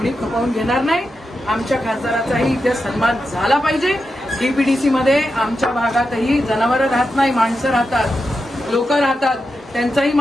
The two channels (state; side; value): normal; both; correlation 0.88